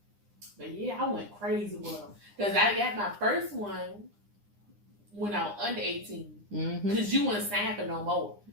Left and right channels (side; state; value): left; late; 9.8 ms